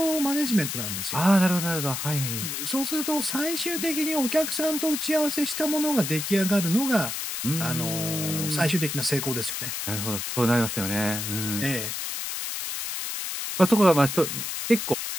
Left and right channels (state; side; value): noise; left; hiss, 4 dB below the sound